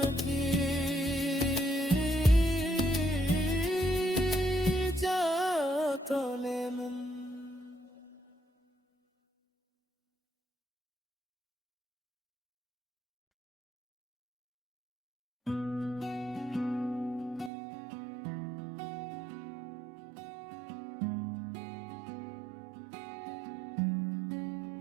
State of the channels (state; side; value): drops out; left; at 17.5 s